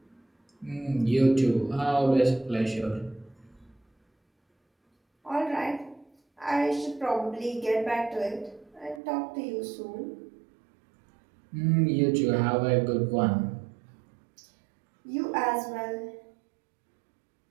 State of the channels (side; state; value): left; drops out; at 9.0 s